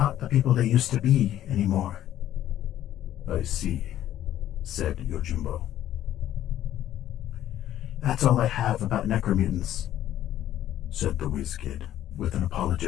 the people they used to be anymore. I see, said Yojimbo. That's all I have about necromutants, said the whiz kid with an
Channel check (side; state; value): right; quieter; 12.3 dB